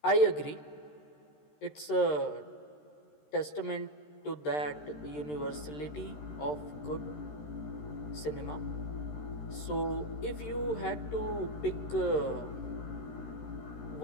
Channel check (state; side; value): late; right; 13 ms